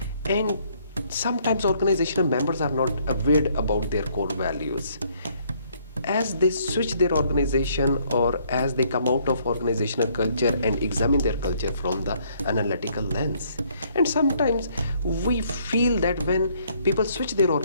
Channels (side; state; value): both; inverted; correlation -0.66